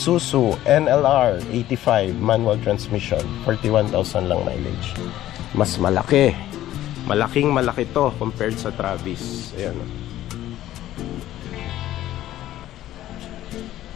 NLR 85 manual transmission, 41,000 lang mileage. Mas malaki. Malaking malaki to compared sa Travis. Ayan.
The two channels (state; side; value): quieter; right; 13.7 dB